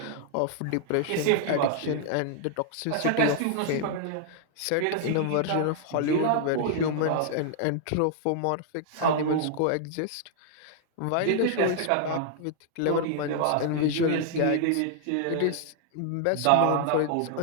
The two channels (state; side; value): different; both; correlation -0.01